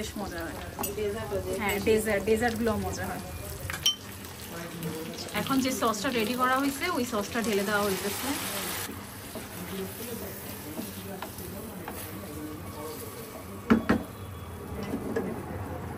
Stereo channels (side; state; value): both; identical; correlation 1.00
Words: মজা হয়। হ্যাঁ, ডেজার্টগুলো মজা হয়। এখন যে সসটা রেডি করা হয়েছে, ওই সসটা ঢেলে দেওয়া হয়েছে।